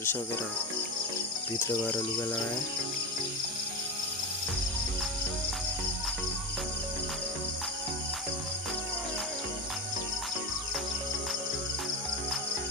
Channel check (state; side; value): normal; both; correlation 0.20